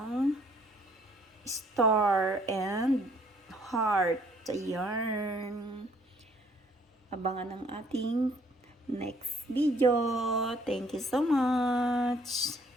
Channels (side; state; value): both; normal; correlation 0.62